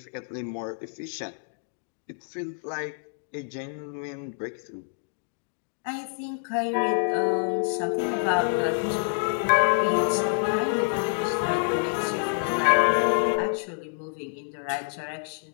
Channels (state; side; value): silent; right; 57 dB below the other